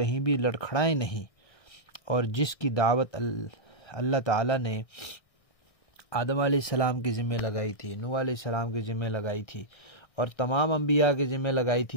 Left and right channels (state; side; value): late; right; 1.6 ms